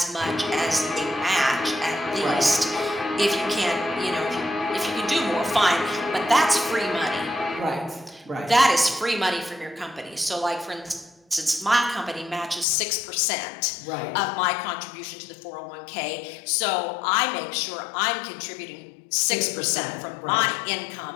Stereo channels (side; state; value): right; drops out; at 12.7 s